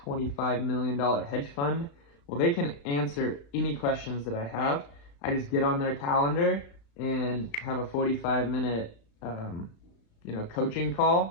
million hedge fund. Well, they can answer any questions that I have. I just get on their calendar and have a 45-minute coaching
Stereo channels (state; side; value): late; right; 35 ms